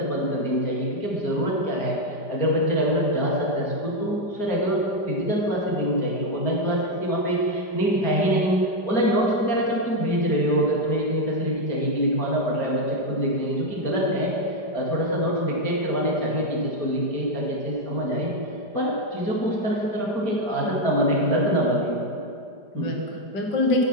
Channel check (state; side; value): late; right; 5.0 ms